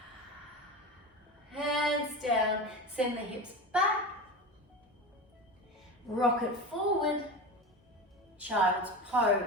Hands down, send the hips back. Rock it forward. Child's pose.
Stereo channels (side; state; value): both; normal; correlation 0.25